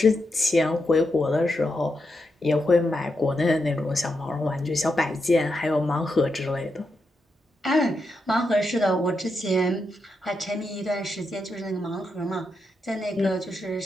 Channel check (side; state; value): both; normal; correlation 0.85